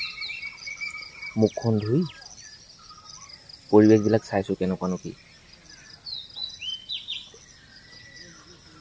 মুখখন ধুই পৰিৱেশবিলাক চাইছোঁ কেনেকুৱানো কি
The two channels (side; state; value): both; identical; correlation 1.00